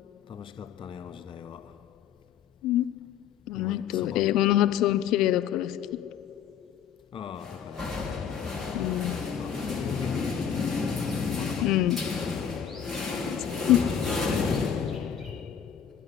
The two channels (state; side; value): quieter; right; 8.6 dB